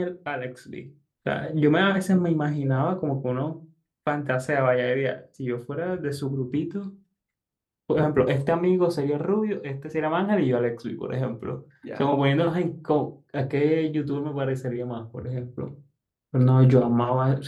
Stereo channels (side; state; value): both; identical; correlation 1.00